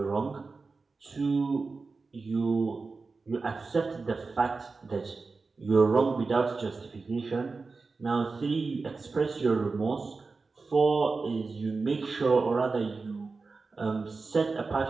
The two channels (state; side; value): quieter; left; 4.1 dB